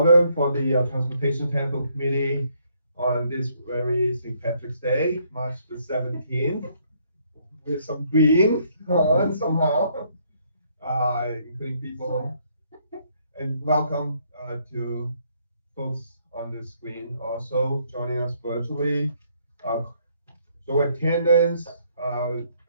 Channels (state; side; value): inverted; both; correlation -0.69